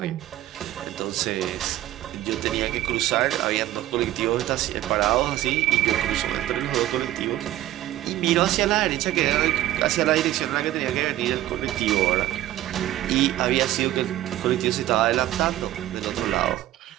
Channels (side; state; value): left; quieter; 14.3 dB